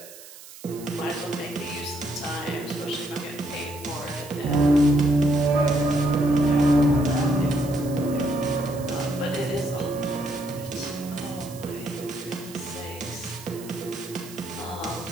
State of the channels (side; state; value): right; noise; hiss, 17 dB below the sound